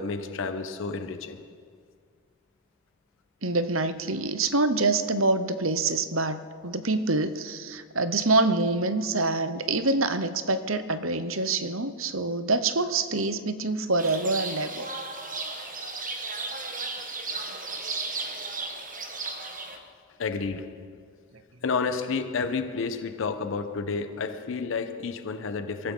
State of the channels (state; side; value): normal; both; correlation -0.17